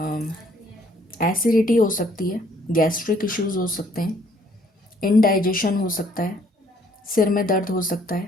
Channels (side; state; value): both; normal; correlation 0.63